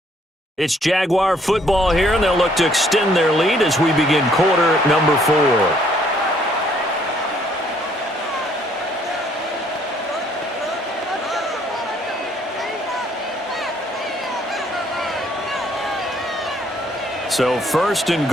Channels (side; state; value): both; normal; correlation 0.65